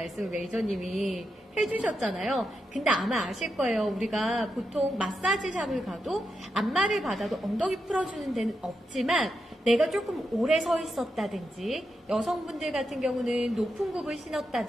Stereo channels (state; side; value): normal; both; correlation 0.86